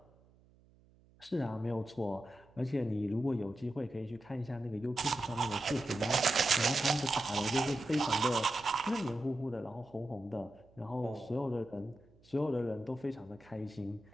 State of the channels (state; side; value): noise; right; hum, 29 dB below the sound